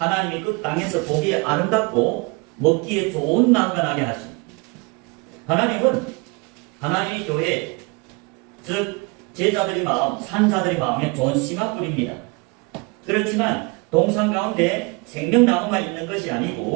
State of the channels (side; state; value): left; quieter; 28.6 dB